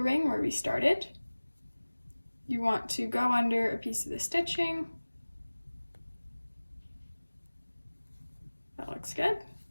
where we started. You want to go under a piece of the stitching. That looks good.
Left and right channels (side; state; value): both; inverted; correlation -1.00